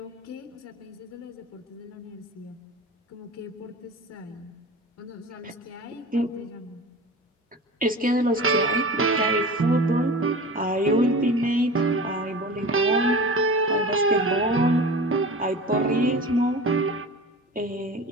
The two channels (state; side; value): normal; both; correlation 0.35